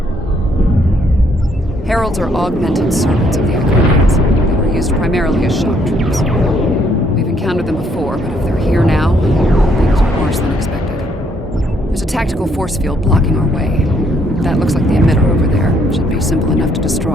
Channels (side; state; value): both; normal; correlation 0.69